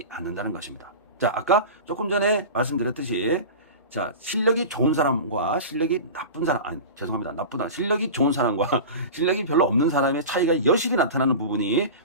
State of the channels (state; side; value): inverted; both; correlation -0.31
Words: 않는다는 것입니다. 자, 아까 조금 전에 말씀드렸듯이, 자, 실력이 좋은 사람과 실력이 나쁜 사람, 실력이 좋은 사람과 실력이 별로 없는 사람의 차이가 여실히 나타나는 부분이